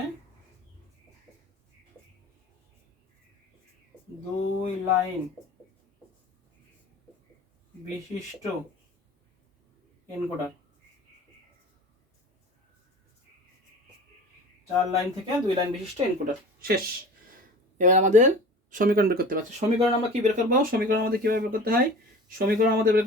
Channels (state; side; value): normal; both; correlation 0.39